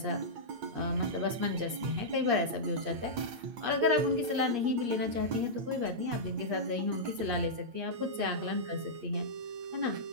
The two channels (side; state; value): left; late; 8.5 ms